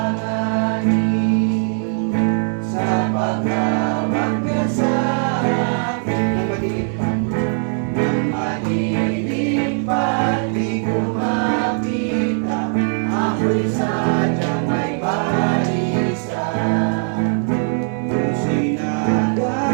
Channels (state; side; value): silent; left; 60 dB below the other